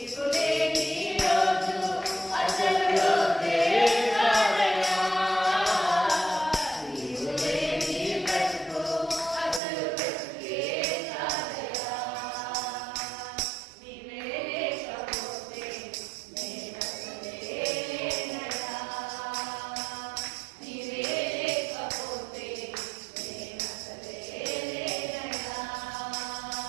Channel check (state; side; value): drops out; left; at 9.6 s